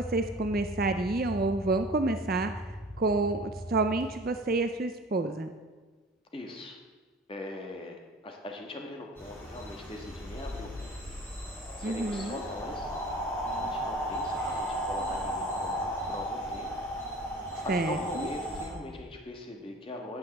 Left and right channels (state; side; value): normal; both; correlation 0.43